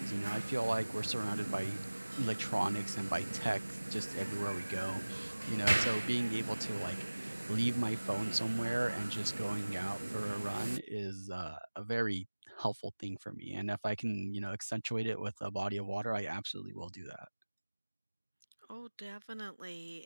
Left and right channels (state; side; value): inverted; both; correlation -1.00